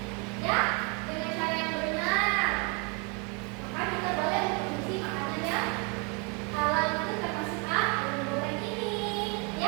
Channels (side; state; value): left; quieter; 33.2 dB